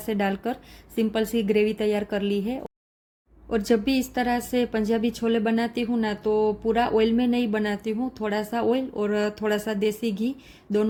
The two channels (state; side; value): identical; both; correlation 1.00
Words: डालकर सिंपल सी ग्रेवी तैयार कर ली है। और जब भी इस तरह से पंजाबी छोले बनाती हूँ ना, तो पूरा ऑयल में नहीं बनाती हूँ, थोड़ा सा ऑयल और थोड़ा सा देसी घी